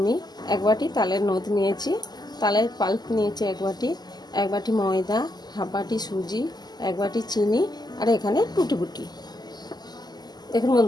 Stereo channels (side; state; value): right; late; 0.20 ms